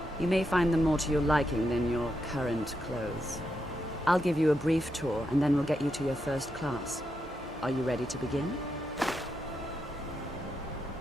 you may find them more to your liking than your current clothes. I'll give you a brief tour, and then we'll get you to your first class. Are you ready to begin?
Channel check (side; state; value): both; normal; correlation 0.83